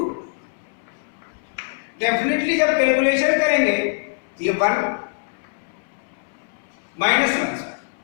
डेफिनेटली जब कैलकुलेशन करेंगे तो ये 1 -1 सर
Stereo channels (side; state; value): right; silent; 63 dB below the other